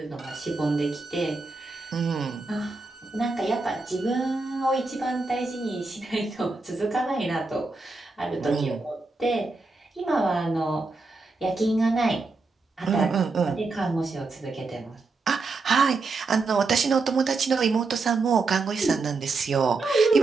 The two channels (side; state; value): left; quieter; 3.8 dB